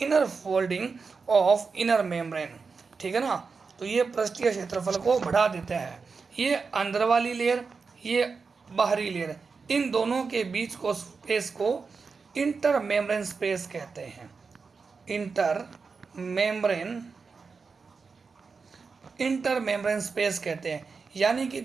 folding of inner membrane. ठीक है ना, तो ये पृष्ठीय क्षेत्रफल को बढ़ा देते हैं। ये अंदर वाली लेयर, ये बाहरी लेयर, इन दोनों के बीच को स्पेस को इंटर मेम्ब्रेन स्पेस कहते हैं। इंटर मेम्ब्रेन स्पेस कहते हैं, यानी कि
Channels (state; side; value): quieter; left; 4.9 dB